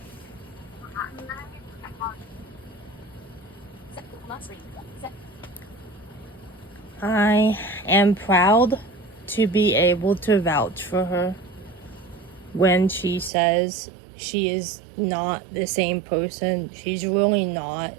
I am proud to be able to vouch for her when she says she is not the same person. She's really not.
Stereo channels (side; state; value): left; drops out; at 13.3 s